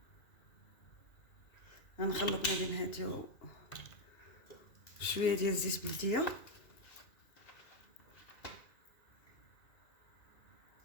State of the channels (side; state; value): right; late; 2.8 ms